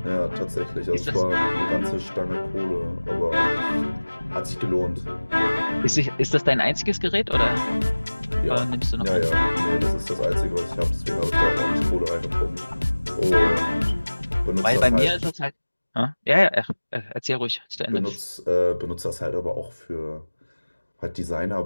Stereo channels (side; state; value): both; inverted; correlation -1.00